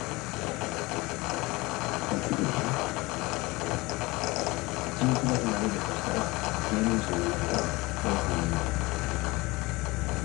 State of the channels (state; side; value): quieter; right; 22.5 dB